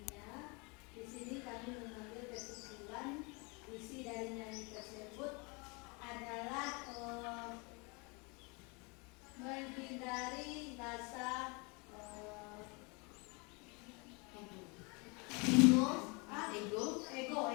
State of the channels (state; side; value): quieter; right; 30.1 dB